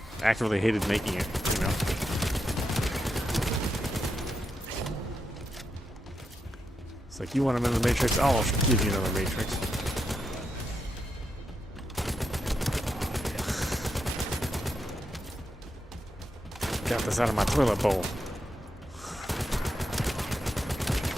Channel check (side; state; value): both; normal; correlation 0.84